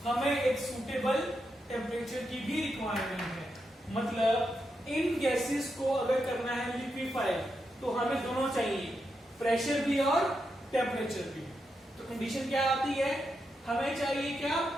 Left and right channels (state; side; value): normal; both; correlation 0.85